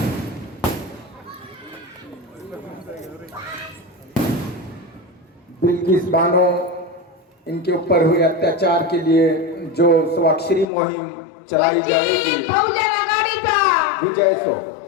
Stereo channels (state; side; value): drops out; right; at 10.7 s